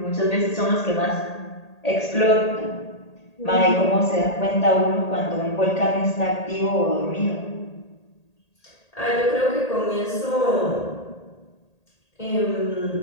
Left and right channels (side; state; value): right; late; 1.8 ms